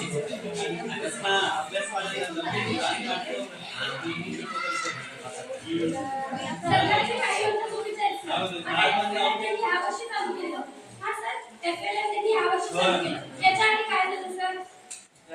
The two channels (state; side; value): identical; both; correlation 1.00